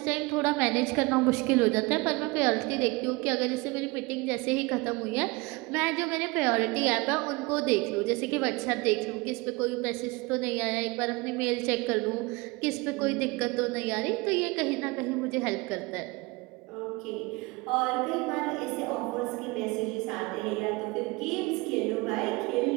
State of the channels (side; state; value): left; quieter; 24.7 dB